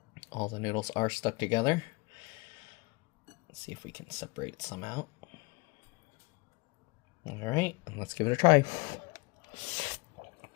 All the noodles are stuck together. Let's see if we can separate some out. Alright, let's give it a try.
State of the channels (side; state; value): right; quieter; 26.3 dB